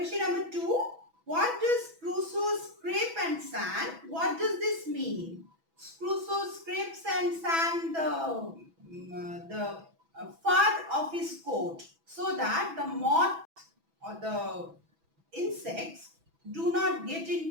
number 2. What does Crusoe scrape and sand? What does this mean? Crusoe scrapes and sand the fur of his coat so that the moth or the insects do not get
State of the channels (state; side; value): late; left; 6.1 ms